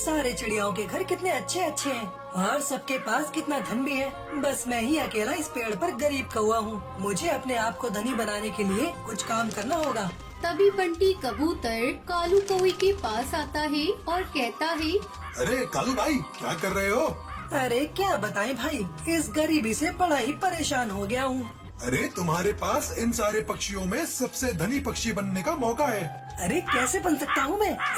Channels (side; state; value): both; identical; correlation 1.00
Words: चिड़ियाओं के घर कितने अच्छे अच्छे हैं और सबके पास कितना धन भी है। बस मैं ही अकेला इस पेड़ पर गरीब कौवा हूँ। मुझे अपने आप को धनी बनाने के लिए कुछ काम करना होगा। तभी बंटी कबूतर कालू कौवे के पास आता है और कहता है, अरे कालू भाई, क्या कर रहे हो? अरे क्या बताएं भाई, इस गरीबी से बड़ा ही परेशान हो गया हूँ। अरे तुम्हारे पास इन सारे पक्षियों में सबसे धनी पक्षी बनने का मौका है। अरे कैसे बन सकता हूँ